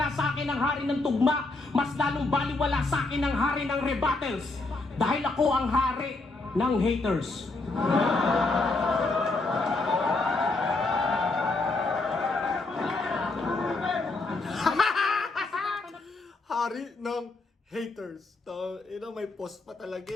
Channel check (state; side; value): quieter; right; 3.3 dB